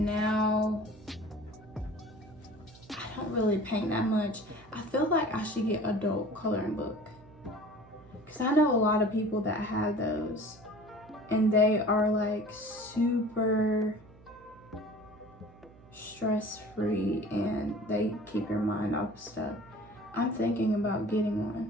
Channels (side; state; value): right; noise; hum, 23 dB below the sound